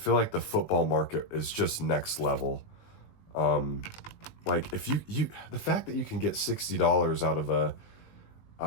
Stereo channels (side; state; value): right; late; 20 ms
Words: like the football market is just next level. Like if the fact that you can get $60 out of